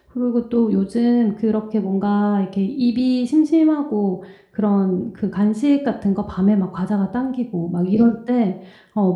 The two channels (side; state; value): both; identical; correlation 1.00